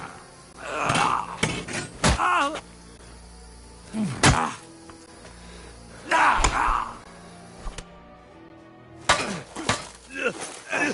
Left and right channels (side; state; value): both; identical; correlation 1.00